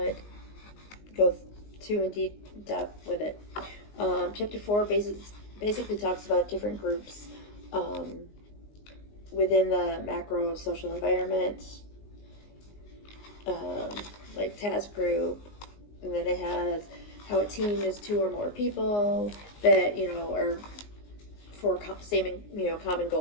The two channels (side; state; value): right; late; 19 ms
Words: go too in deep depth with it. Chapter 4 basically talks about different groups within the macro social environment, like task group, and then it has how a team is 2 or more people that, are for common